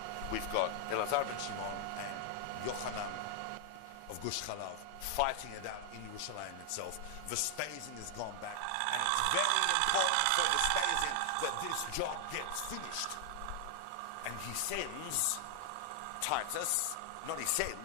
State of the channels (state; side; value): different; both; correlation 0.00